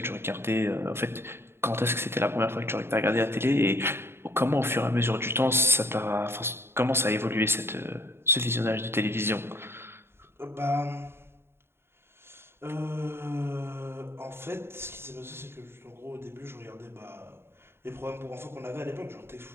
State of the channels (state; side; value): late; left; 0.12 ms